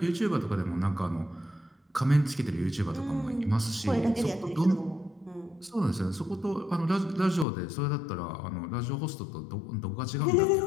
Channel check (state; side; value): drops out; right; at 7.5 s